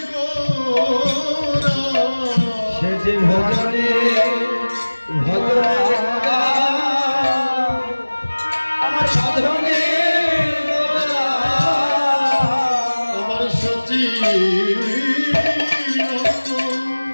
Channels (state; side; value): inverted; both; correlation -1.00